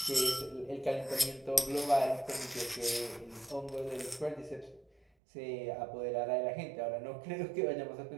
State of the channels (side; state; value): left; drops out; at 5.1 s